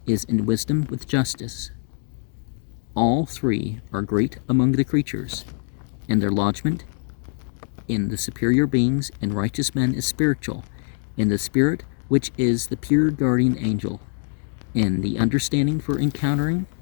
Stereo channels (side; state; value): right; silent; 56 dB below the other